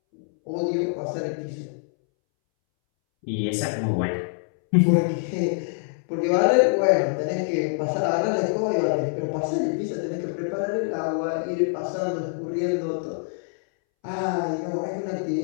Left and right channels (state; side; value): silent; right; 62 dB below the other